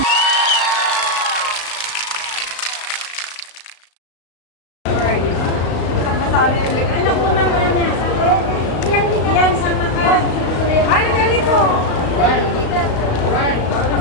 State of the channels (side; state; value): right; late; 35 ms